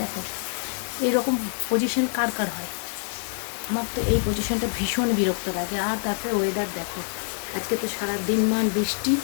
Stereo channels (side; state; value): right; silent; digital silence